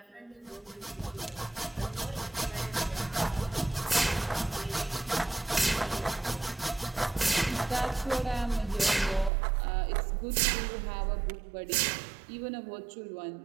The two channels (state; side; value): drops out; left; at 9.3 s